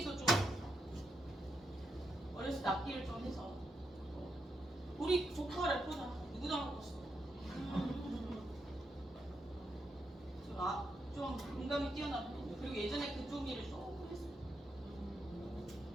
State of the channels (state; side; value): normal; both; correlation 0.82